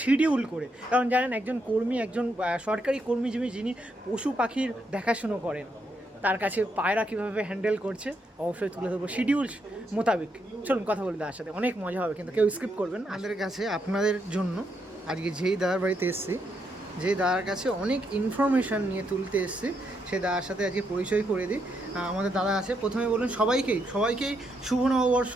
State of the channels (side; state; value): both; normal; correlation 0.79